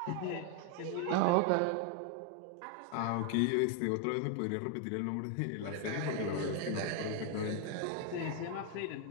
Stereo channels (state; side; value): different; both; correlation 0.00